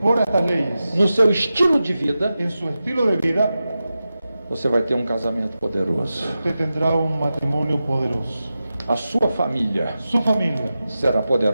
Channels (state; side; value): inverted; both; correlation -0.92